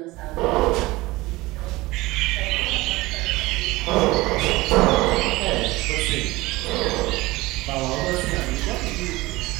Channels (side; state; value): left; quieter; 20.3 dB